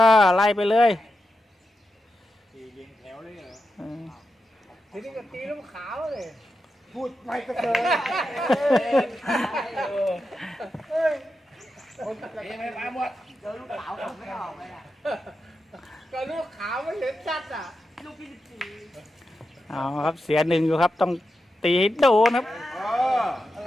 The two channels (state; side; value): normal; both; correlation 0.89